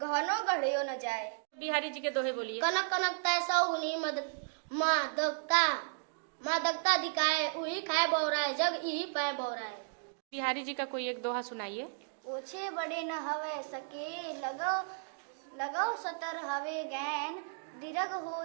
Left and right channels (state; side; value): silent; left; digital silence